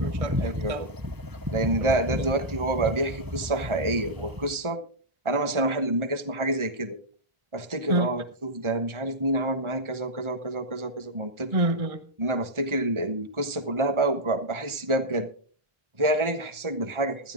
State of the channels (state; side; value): late; left; 1.4 ms